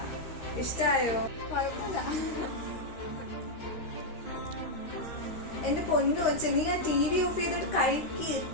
ഇഷ്ടായോ? കുഴപ്പമില്ല. എന്റെ പൊന്നു വെച്ച് നീ ആ TV ഓഫ് ചെയ്തിട്ട് കഴിക്ക്.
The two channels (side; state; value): right; late; 13 ms